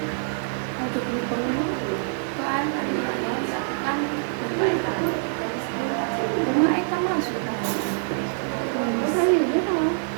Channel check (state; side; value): silent; left; digital silence